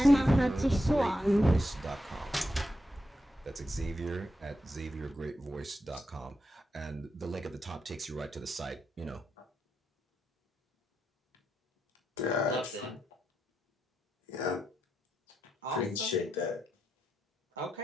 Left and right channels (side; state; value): both; normal; correlation 0.85